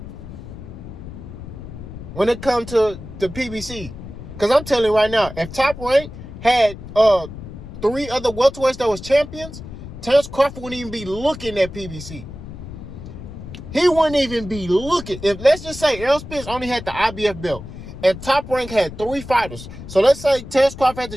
When it comes to the PBC. Because I'm telling you right now, if Top Rank had 3 other welterweights that was champions, Terence Crawford wouldn't even be looking at PBC. He wouldn't even be looking. If let's just say Errol Spence only had the IBF belt and Top Rank had 3 fighters. So let's say Terence Crawford had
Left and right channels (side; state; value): left; noise; rumble, 12 dB below the sound